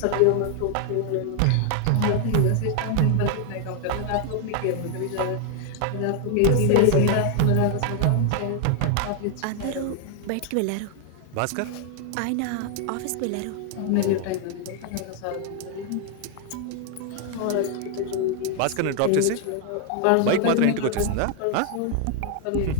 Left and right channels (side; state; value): both; different; correlation 0.00